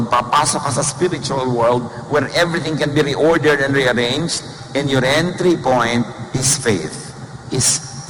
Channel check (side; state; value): both; identical; correlation 1.00